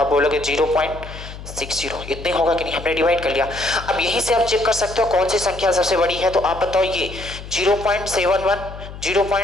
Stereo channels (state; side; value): noise; left; hum, 13 dB below the sound